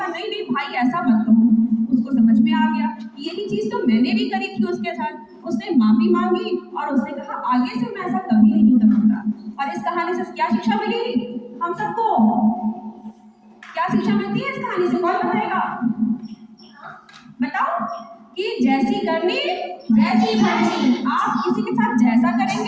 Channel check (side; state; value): both; identical; correlation 1.00